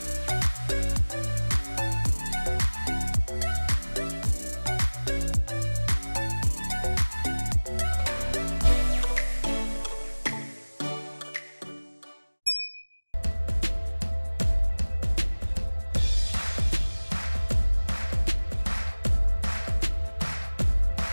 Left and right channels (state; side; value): inverted; both; correlation -1.00